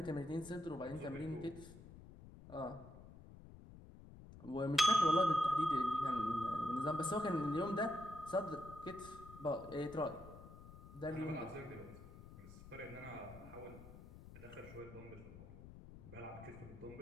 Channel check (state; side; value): noise; left; rumble, 16 dB below the sound